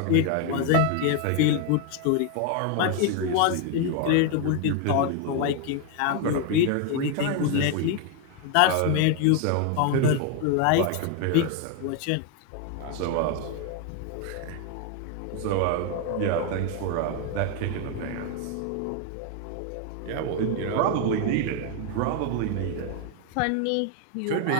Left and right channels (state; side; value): different; both; correlation 0.01